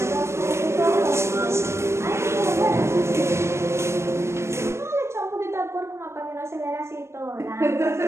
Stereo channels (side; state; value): left; late; 0.13 ms